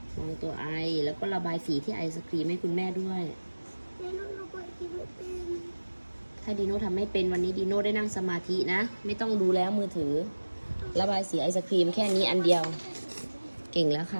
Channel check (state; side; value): inverted; both; correlation -1.00